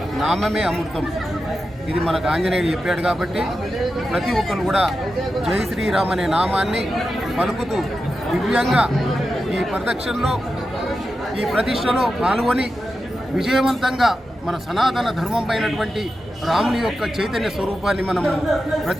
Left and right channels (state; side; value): normal; both; correlation 0.90